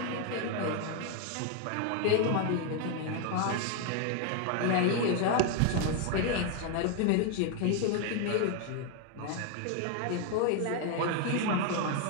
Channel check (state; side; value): different; both; correlation 0.01